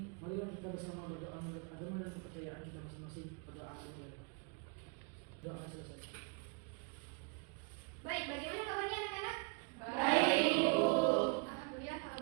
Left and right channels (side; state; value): left; quieter; 35.1 dB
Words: marilah kita bersama berdoa menurut agama dan kepercayaan kita masing-masing. Berdoa mulai. Doa selesai. Baik, bagaimana kabarnya anak-anak? Baik, Bu. Alhamdulillah kalau